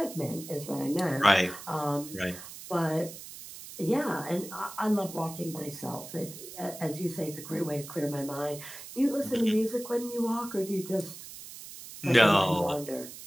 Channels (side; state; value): right; noise; hiss, 13 dB below the sound